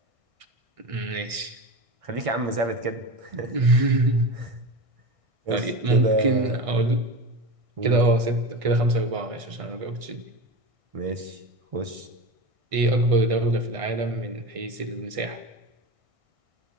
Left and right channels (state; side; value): late; left; 1.6 ms